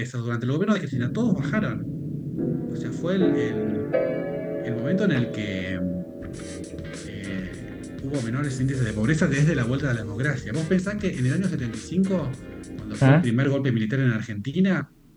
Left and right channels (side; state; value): both; identical; correlation 1.00